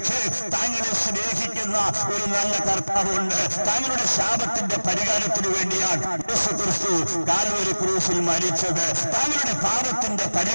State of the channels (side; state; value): both; inverted; correlation -1.00